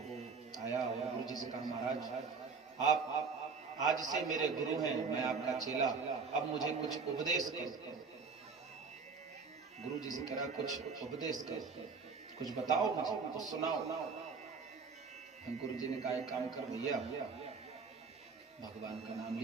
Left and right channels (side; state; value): left; quieter; 5.0 dB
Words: आया और गुरु जी से कहा महाराज आप आज से मेरे गुरु हैं, मैं आपका चेला, अब मुझे कुछ उपदेश करो। गुरु जी से कहा कुछ उपदेश करो, कुछ बताओ मुझे, कुछ सुनाओ। गुरु जी ने कहा एक काम कर भैया, भगवान का नाम